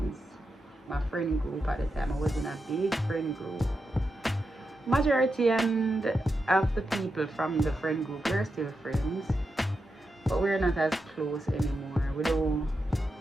My friend group at the time. I was in a big friend group. Majority and of the people from the friend group, we're still friends. But we're not as close anymore. We don't.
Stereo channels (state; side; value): normal; both; correlation 0.87